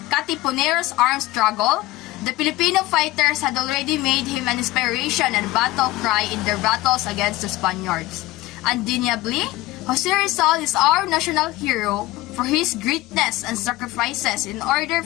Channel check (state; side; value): quieter; right; 17.8 dB